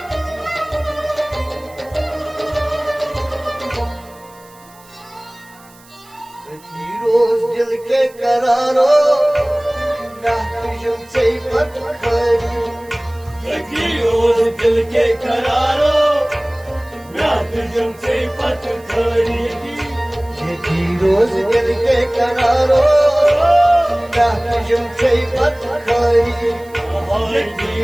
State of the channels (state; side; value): noise; right; hiss, 26 dB below the sound